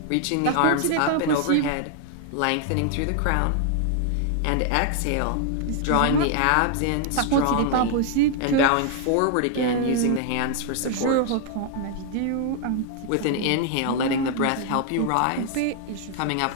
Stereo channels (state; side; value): different; both; correlation 0.00